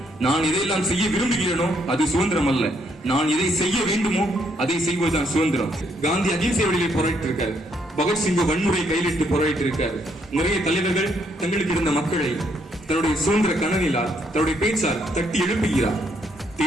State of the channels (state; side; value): normal; both; correlation 0.72